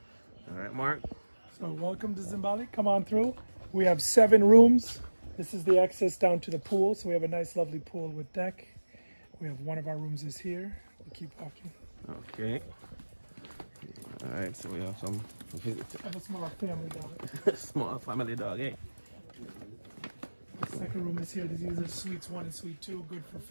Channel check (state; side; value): inverted; both; correlation -1.00